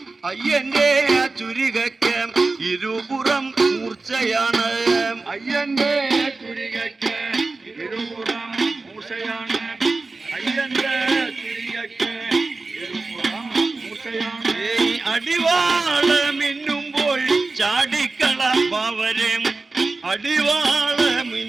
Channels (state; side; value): quieter; left; 3.7 dB